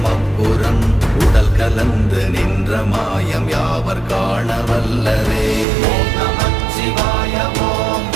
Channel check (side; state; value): left; drops out; at 5.7 s